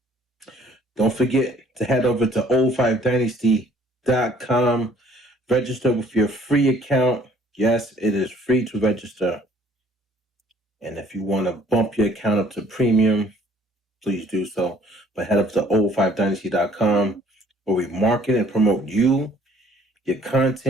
Don't forget to head over to oO5Dynasty.com. Register with your free account. Yes, it is free to register. And if you want to bump your account up to premium, please do so. But head up to oO5Dynasty.com where we market and promote you, your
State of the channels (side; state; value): both; normal; correlation 0.59